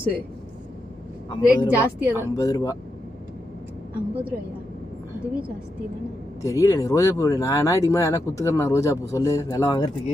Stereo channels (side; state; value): both; normal; correlation 0.85